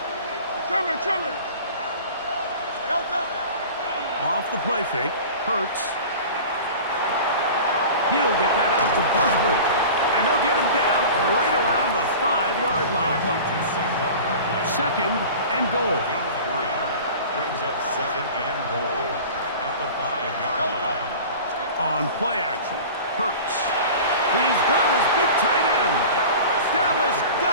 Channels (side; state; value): both; inverted; correlation -0.38